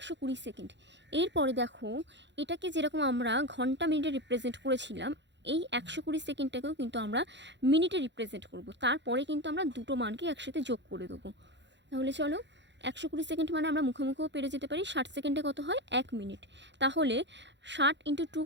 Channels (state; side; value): late; left; 0.52 ms